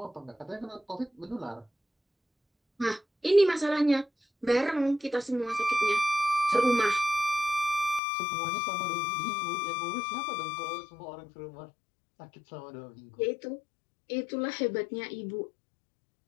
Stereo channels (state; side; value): drops out; right; at 8.0 s